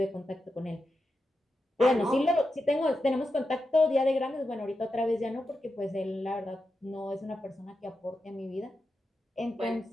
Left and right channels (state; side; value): normal; both; correlation 0.89